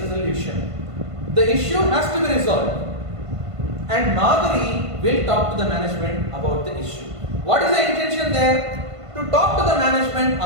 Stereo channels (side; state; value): left; late; 1.5 ms